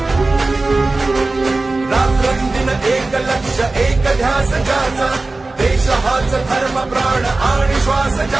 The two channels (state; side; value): quieter; left; 3.3 dB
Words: रात्रंदिन एक लक्ष एक ध्यास ज्याचा देश हाच धर्म प्राण आणि श्वास